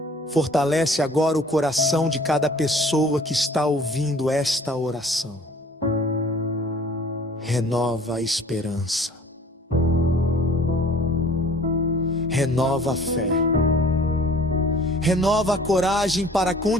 fortalece agora o coração de cada pessoa que está ouvindo esta oração. Renova a esperança. Renova a fé. Renova a coragem para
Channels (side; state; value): both; normal; correlation 0.51